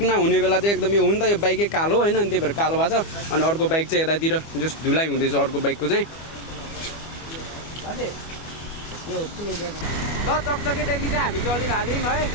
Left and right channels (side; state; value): right; late; 25 ms